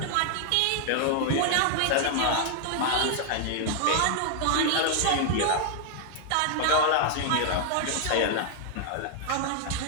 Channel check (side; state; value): both; different; correlation 0.00